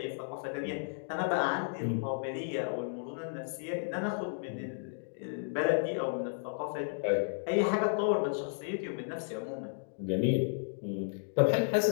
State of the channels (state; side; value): silent; right; digital silence